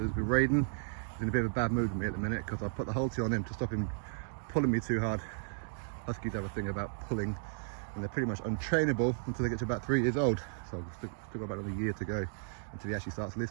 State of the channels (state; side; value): silent; left; digital silence